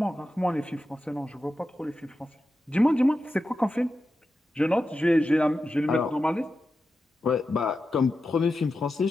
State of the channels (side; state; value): both; normal; correlation 0.91